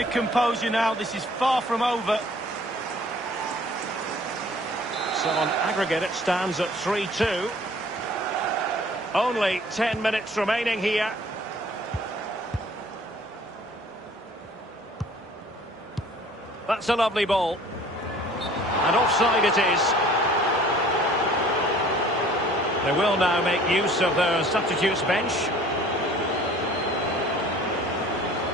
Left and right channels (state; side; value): normal; both; correlation 0.51